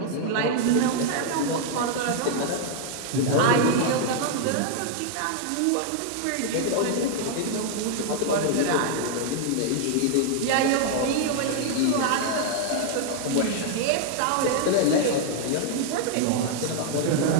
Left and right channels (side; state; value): both; different; correlation 0.00